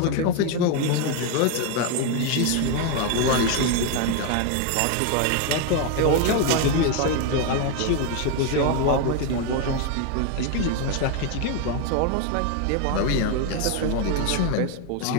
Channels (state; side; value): different; both; correlation 0.01